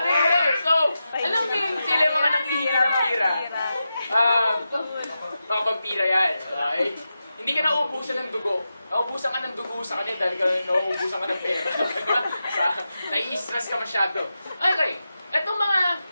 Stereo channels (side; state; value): both; inverted; correlation -0.90